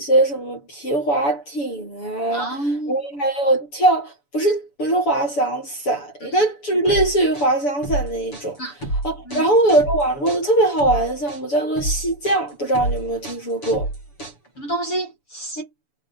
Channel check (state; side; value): late; right; 7.0 ms